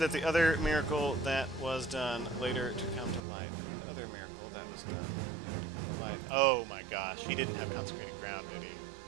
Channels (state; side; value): drops out; left; at 3.2 s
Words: the other miracle that was done later to come to light. The other miracle that was done later to come to light. Oh my gosh, he didn't have consecrated ground, did he?